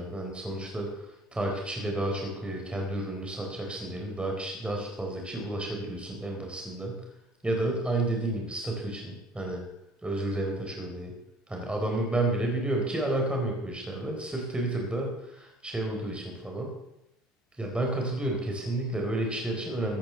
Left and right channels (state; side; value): normal; both; correlation 0.53